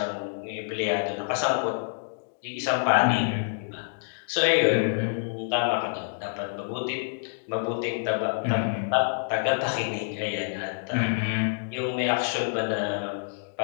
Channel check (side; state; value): right; silent; digital silence